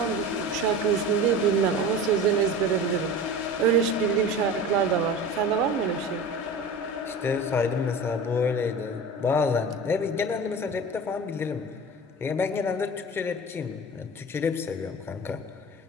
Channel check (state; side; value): normal; both; correlation 0.34